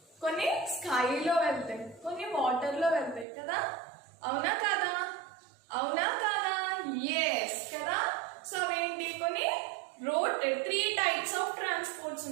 కొన్ని స్కైలో వెళ్తాయి, కొన్ని వాటర్లో వెళ్తాయి కదా. అవునా కాదా? అవునా కాదా? ఎస్ కదా. సో అవేంటి? కొన్ని రోడ్ 3 types of transports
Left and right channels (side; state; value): left; drops out; at 3.2 s